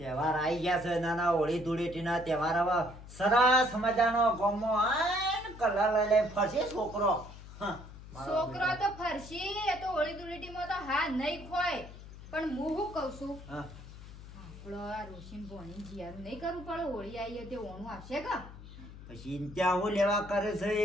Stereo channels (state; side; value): noise; left; hum, 15 dB below the sound